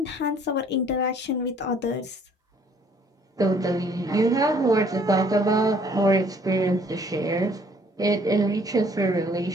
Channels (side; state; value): both; normal; correlation 0.60